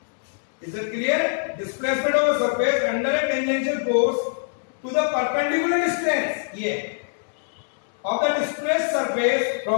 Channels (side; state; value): right; silent; 62 dB below the other